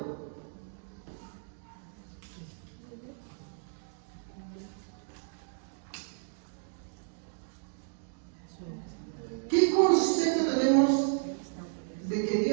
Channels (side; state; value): left; silent; digital silence